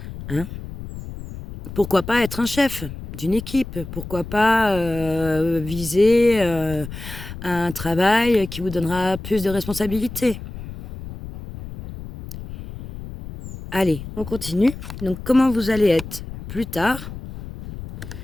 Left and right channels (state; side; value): noise; left; rumble, 11 dB below the sound